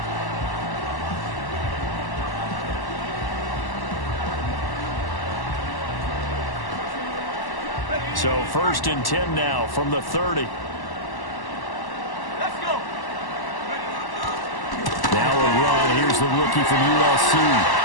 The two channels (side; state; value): right; late; 1.1 ms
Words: So 1st and 10 now from the 30. Let's go. Now a run. Here's the rookie from USC. And